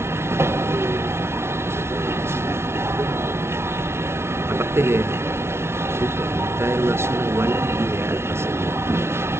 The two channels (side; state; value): left; late; 0.12 ms